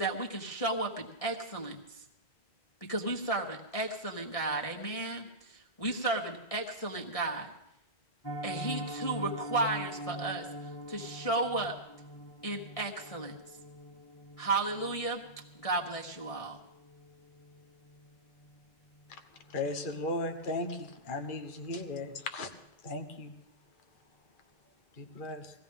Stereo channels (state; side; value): late; right; 1.6 ms